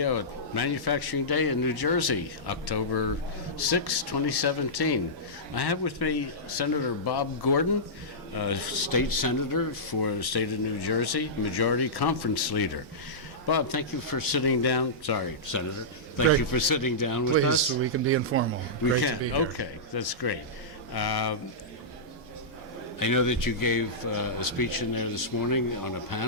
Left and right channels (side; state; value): both; normal; correlation -0.15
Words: at Manufacturing Day in New Jersey, October 6, 2017. I have with me Senator Bob Gordon, State Senator for the state of New Jersey, Majority Conference Leader. Bob, thank you for sitting down. Sorry, Senator. Thank you for sitting down with us. Please, we can be informal. We Great can. to be here. Okay, that's great. I know that you gave a speech in there this morning on a